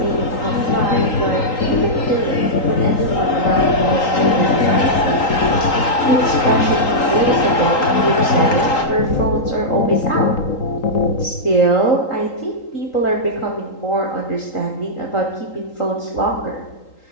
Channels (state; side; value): late; right; 3.8 ms